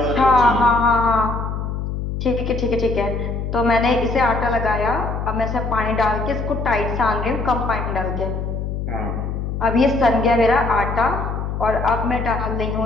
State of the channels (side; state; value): left; noise; hum, 4 dB below the sound